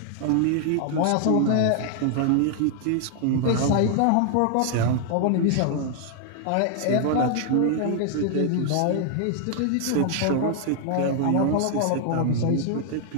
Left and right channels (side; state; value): both; different; correlation 0.00